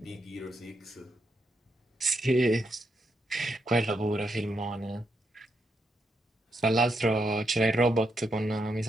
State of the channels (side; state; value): both; normal; correlation 0.81